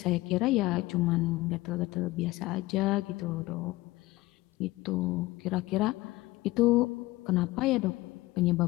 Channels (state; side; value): quieter; right; 19.4 dB